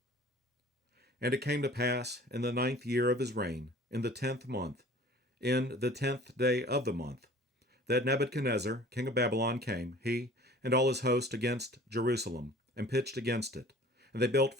And it came to pass in the 9th year of his reign, in the 10th month, in the 10th day of the month, that Nebuchadnezzar, king of Babylon, came, he and all his host, against Jerusalem, and pitched against it. And they built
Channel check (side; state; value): both; normal; correlation 0.47